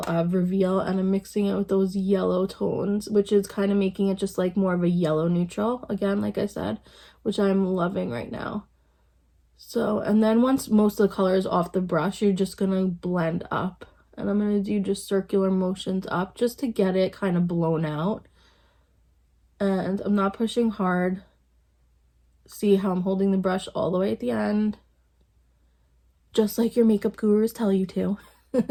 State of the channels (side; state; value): both; identical; correlation 1.00